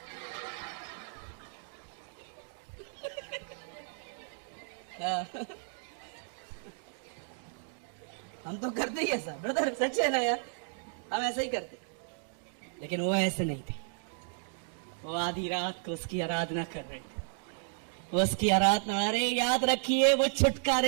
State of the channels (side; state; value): left; silent; digital silence